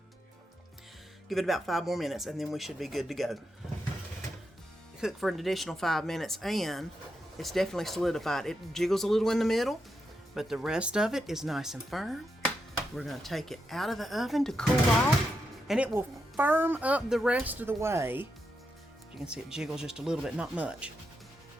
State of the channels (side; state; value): both; normal; correlation 0.85